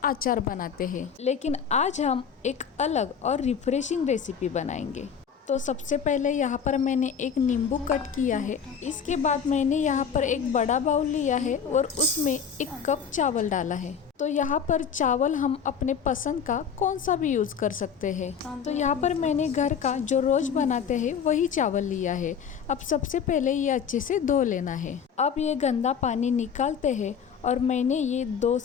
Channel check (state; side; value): quieter; right; 7.1 dB